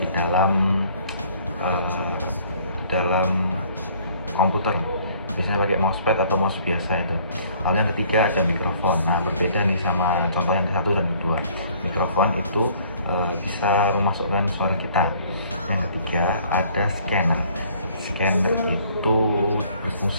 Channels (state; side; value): inverted; both; correlation -0.58